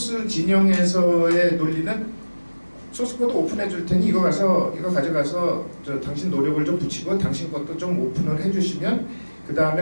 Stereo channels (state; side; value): inverted; both; correlation -1.00